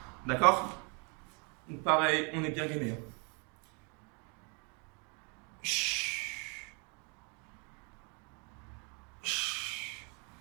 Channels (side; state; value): left; quieter; 34.5 dB